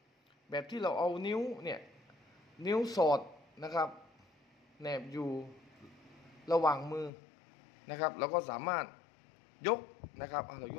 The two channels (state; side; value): drops out; right; at 7.1 s